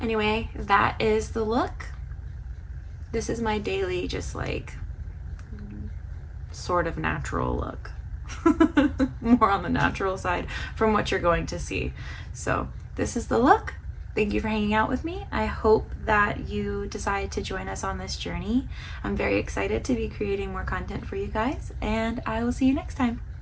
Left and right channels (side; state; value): both; identical; correlation 1.00